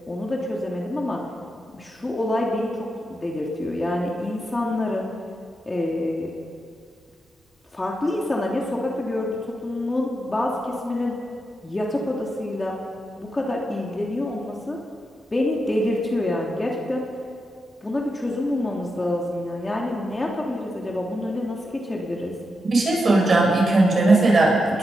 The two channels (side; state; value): both; normal; correlation 0.86